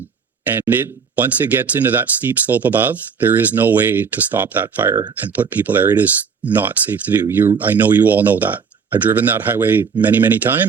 once it gets into that steep slope above, there is no way to stop that fire and put people there. It is not safe to do. I know you all know that. I've driven that highway many, many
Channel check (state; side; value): quieter; left; 6.2 dB